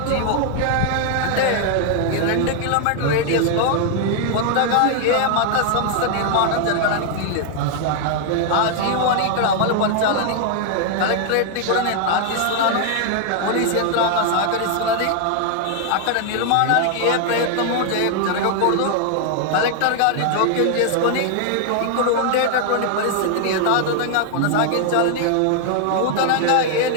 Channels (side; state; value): both; different; correlation 0.00